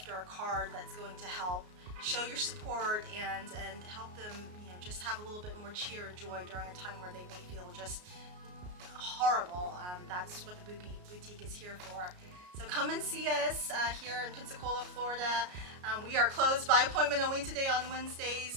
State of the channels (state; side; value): late; left; 33 ms